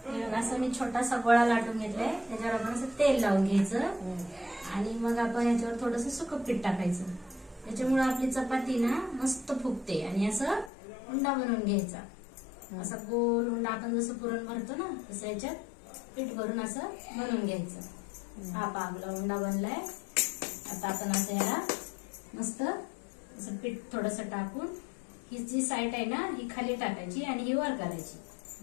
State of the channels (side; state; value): right; drops out; at 10.7 s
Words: असं मी छोटासा गोळा लाटून घेतलाय. त्याच्यावर आपण असं तेल लावून घ्यायचं आणि मग आपण याच्यावर थोडंसं सुकं पीठ टाकायचं. त्याच्यामुळे आपली चपाती ना मस्त फुगते. आणि असं उंडा बनवून घ्यायचा. असा गोल उंडा आपण जसं पुरण भरतो ना तसं याच्यात पीठ भरून असं बनवून घ्यायचं. हा आपला उंडा बनलाय. आता आपण असं याला मस्त असं पीठ थोडंसं टाकून ही जी साईड आहे ना ही खाली टाकायची आणि ही वर करायची.